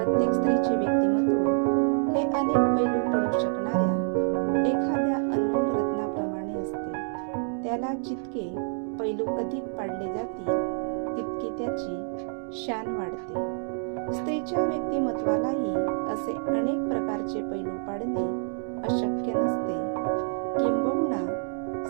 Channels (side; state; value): left; silent; 60 dB below the other